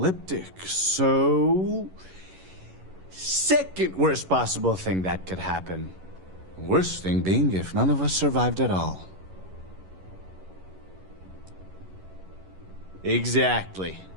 so... second worst possible thing that could happen. Worst thing being if none of us survived at all. Exactly.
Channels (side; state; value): left; late; 11 ms